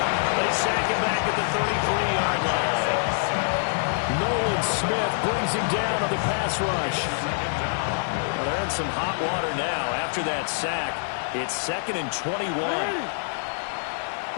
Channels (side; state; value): right; silent; 57 dB below the other